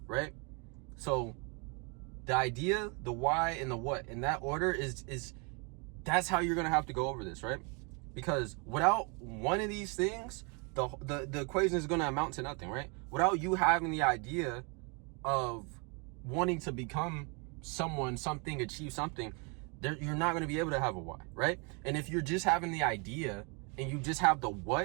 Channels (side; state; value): left; quieter; 33.1 dB